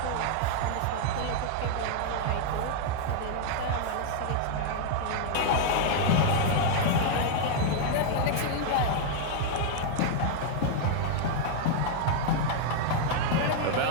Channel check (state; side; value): different; both; correlation 0.00